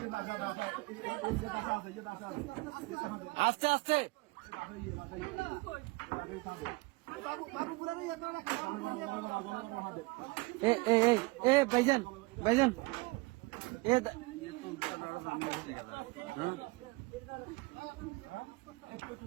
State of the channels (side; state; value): left; quieter; 24.1 dB